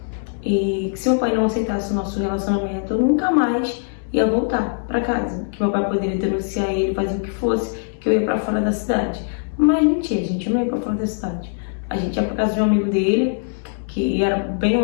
E que se meu pai não aceitasse o nosso relacionamento, eu nunca mais ia voltar pra casa. Que meu pai poderia denunciar ele, fazer o que fosse, que eu ia pra fora da cidade. Mas mentira, gente, eu não ia pra fora da cidade. A gente ia pra casa de um amigo dele, que era bem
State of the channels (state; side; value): silent; right; 65 dB below the other